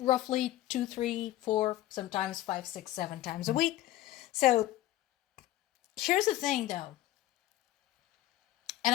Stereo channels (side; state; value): right; quieter; 14.7 dB